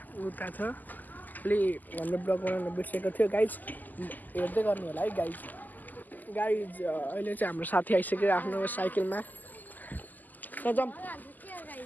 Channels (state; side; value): late; right; 0.084 ms